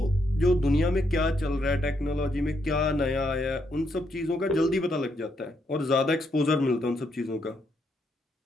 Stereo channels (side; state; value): both; normal; correlation 0.77